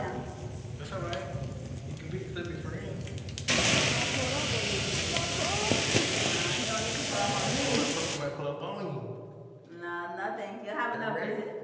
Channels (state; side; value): identical; both; correlation 1.00